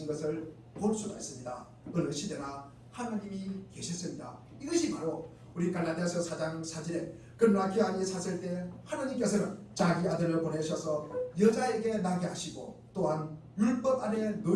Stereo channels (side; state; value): both; identical; correlation 1.00